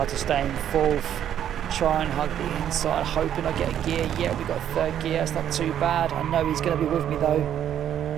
to stay in fourth, try and hug the inside, hoping I get a gear. Yeah, we've got a third gear, it's not too bad. I know he's going to be with me though.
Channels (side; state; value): left; quieter; 10.2 dB